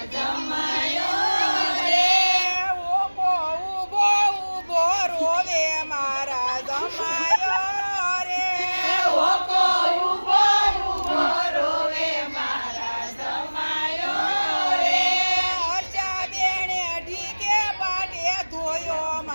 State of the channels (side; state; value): both; inverted; correlation -1.00